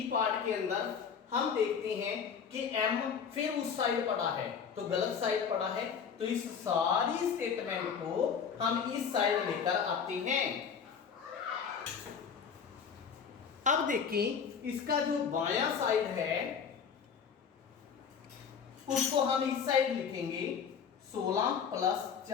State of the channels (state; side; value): quieter; right; 6.8 dB